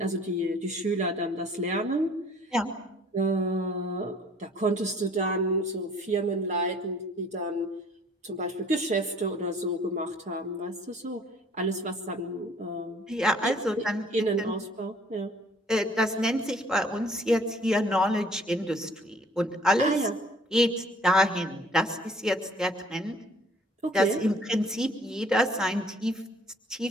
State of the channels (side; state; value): both; normal; correlation 0.56